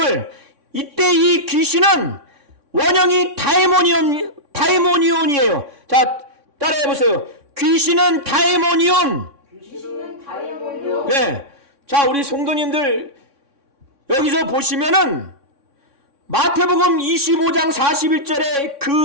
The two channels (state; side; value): late; left; 3.6 ms